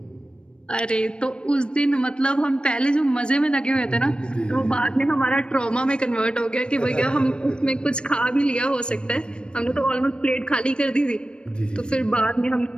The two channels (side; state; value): right; late; 0.054 ms